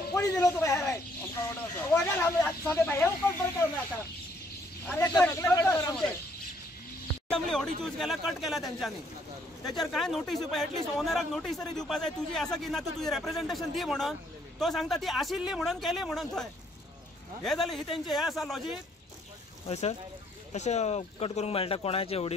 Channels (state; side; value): normal; both; correlation 0.67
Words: कोणी दिलं होतं बाहेर ऑडी चूज केला कट केला त्यांच्यानी त्याच्यावर काय नोटीस एटलीस्ट ओनराक नोटीस तरी दिवपा जाय तुझी असं की ना तू तुझी रिप्रेझेंटेशन दी म्हणून तो सांगता ती आशिल्ली म्हणून केली म्हणून थंय हे झाले ही त्यांचे हे असा लॉजिक हय सर अशें कट करूंक मेळटा कोणाचे